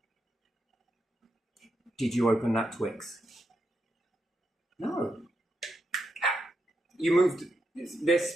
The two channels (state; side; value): normal; both; correlation 0.84